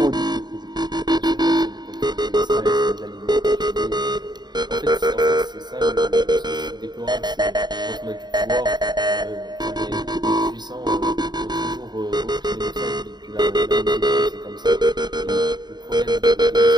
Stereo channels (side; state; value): left; late; 0.20 ms